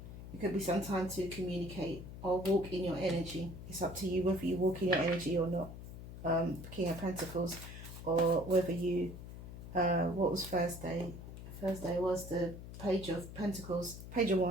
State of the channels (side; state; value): left; noise; hum, 11 dB below the sound